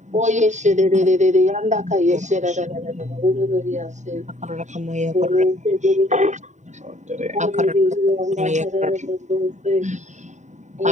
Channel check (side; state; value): left; late; 0.34 ms